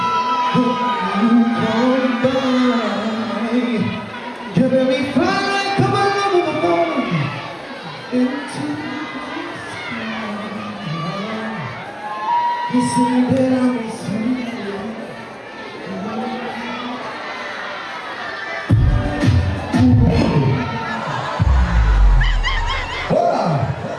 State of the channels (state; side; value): identical; both; correlation 1.00